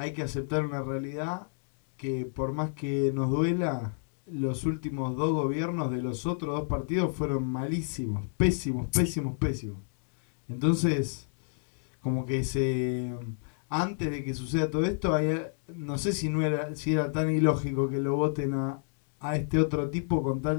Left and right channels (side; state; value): right; silent; digital silence